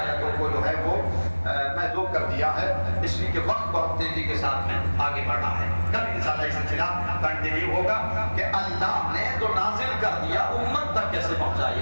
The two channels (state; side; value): inverted; both; correlation -1.00